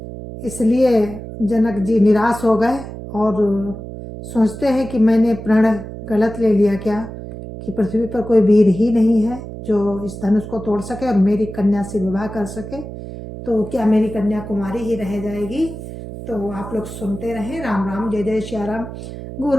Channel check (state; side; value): noise; right; hum, 11 dB below the sound